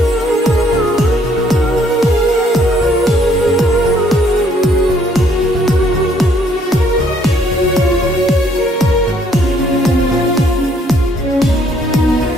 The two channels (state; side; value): normal; both; correlation 0.65